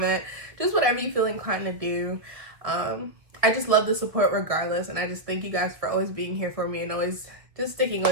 Just whatever you feel inclined to do. I just love the support regardless, and I just thank you guys for always being here for me and always just sticking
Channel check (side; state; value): left; late; 1.4 ms